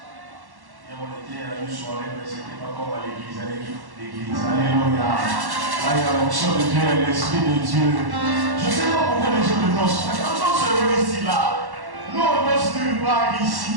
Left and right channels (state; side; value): late; left; 1.1 ms